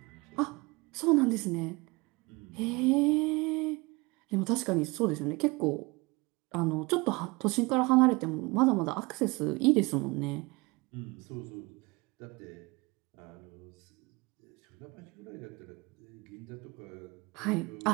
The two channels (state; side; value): quieter; left; 25.0 dB